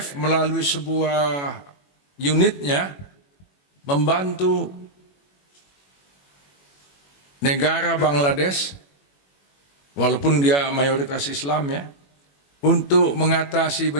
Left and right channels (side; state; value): right; late; 21 ms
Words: melalui sebuah unitnya membantu negara Bangladesh, walaupun dia mayoritas Islam ya, untuk mengatasi